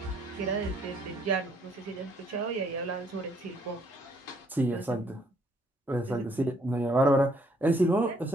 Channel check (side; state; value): both; normal; correlation 0.67